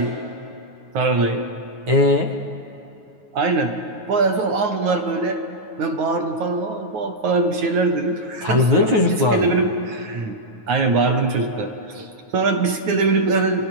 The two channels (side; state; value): left; late; 9.4 ms